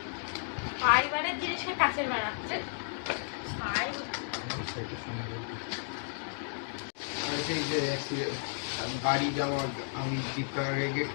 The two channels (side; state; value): right; silent; digital silence